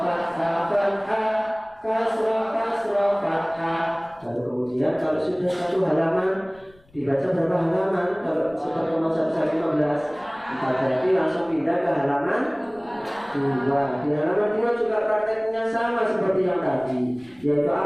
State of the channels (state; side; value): noise; left; rumble, 30 dB below the sound